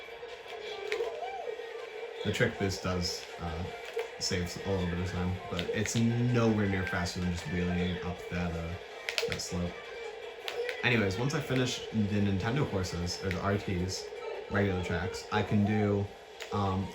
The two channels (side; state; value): both; identical; correlation 1.00